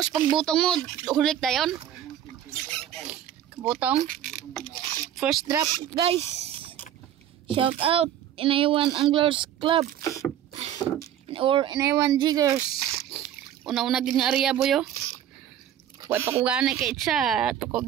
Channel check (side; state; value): left; quieter; 10.6 dB